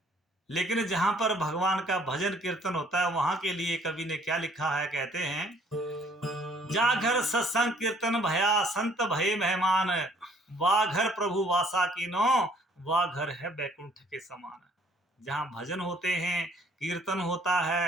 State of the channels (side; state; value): both; normal; correlation 0.60